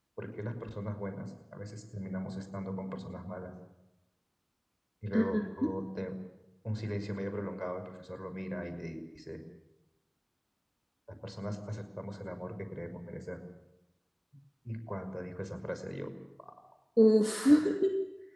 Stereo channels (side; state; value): both; identical; correlation 1.00